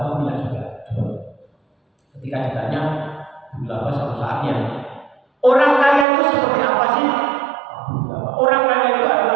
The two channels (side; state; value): left; drops out; at 6.1 s